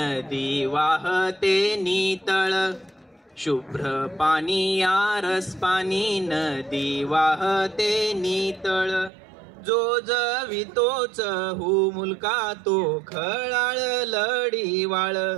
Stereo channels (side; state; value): left; drops out; at 9.1 s